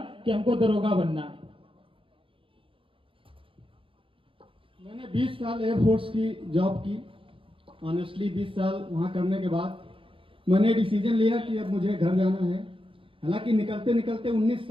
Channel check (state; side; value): late; left; 0.25 ms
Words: कि हमको दरोगा बनना है। मैंने 20 साल एयरफोर्स की जॉब की। ऑनेस्टली 20 साल वहां करने के बाद मैंने डिसीजन लिया कि अब मुझे घर जाना है। हालांकि निकलते निकलते 19